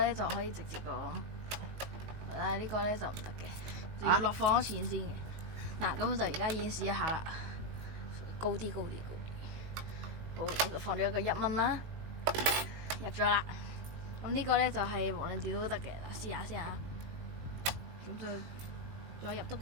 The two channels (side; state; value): left; late; 19 ms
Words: 就可以直接咁，但係呢個咧就唔得嘅，就要落放咗錢先嘅。嗱，咁我就而家演示一下啦，高啲。好，咁就放咗一個1蚊啦，入咗啦。咁呢個咧就係無論點都得嘅。嗱，試下先嚇。咁就再入多